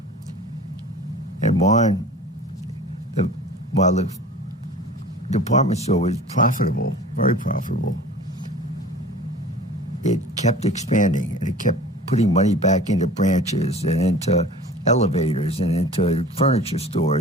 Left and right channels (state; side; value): normal; both; correlation 0.42